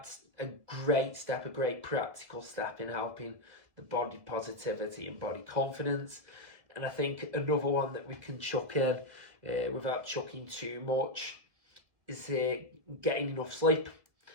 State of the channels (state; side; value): late; left; 2.0 ms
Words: a great step, a great practical step in helping the body positivity and body confidence. And I think another one that we can chuck in without chucking too much is getting enough sleep.